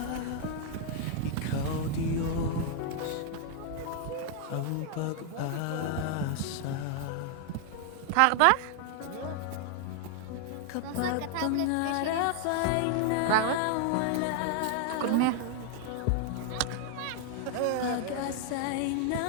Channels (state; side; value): different; both; correlation 0.00